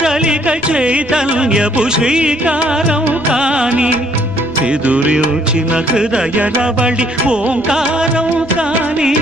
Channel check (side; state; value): left; noise; rumble, 24 dB below the sound